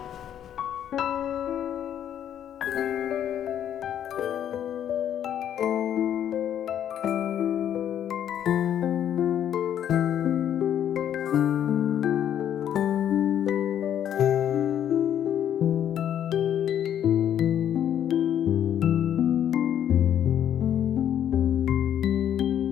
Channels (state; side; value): quieter; right; 10.0 dB